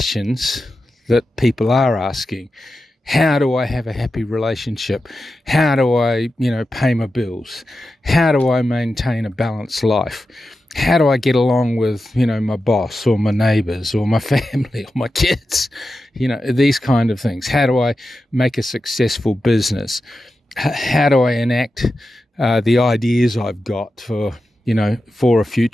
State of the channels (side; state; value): both; normal; correlation 0.91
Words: that people are asking. How do I have a happy relationship? How do I, pay my bills? How do I maintain a balanced life? How do I get along with, my boss or my neighbors or my family or my kids? These kind of things. How do I make a successful business? How do I enact the ideas I've got for a